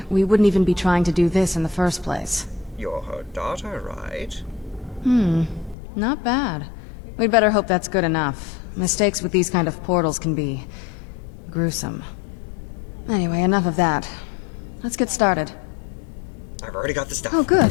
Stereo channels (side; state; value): right; drops out; at 5.8 s